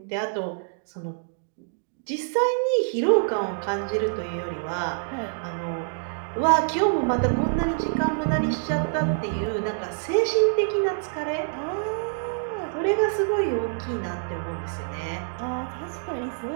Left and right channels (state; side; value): silent; left; digital silence